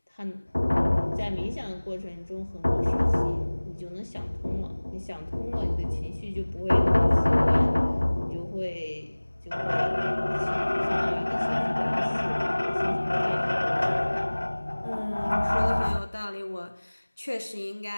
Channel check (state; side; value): inverted; both; correlation -1.00